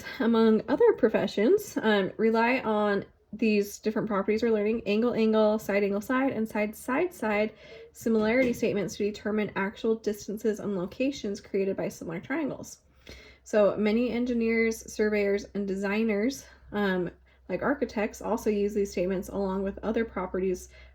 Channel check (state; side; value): identical; both; correlation 1.00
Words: among other professions, rely on these different properties we're learning: angle, angle, side, and side, side similarity statements to determine actual distances and locations created by similar triangles. So many engineers, surveyors, and designers, like architects, also use these statements along with other properties